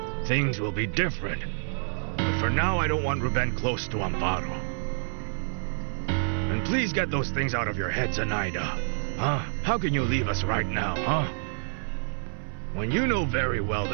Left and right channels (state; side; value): silent; left; 59 dB below the other